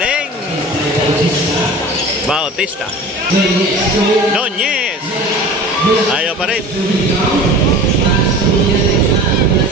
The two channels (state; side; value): normal; both; correlation 0.38